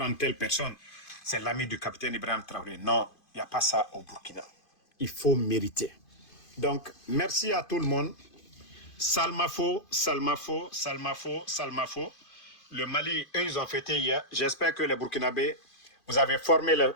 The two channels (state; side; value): late; right; 2.5 ms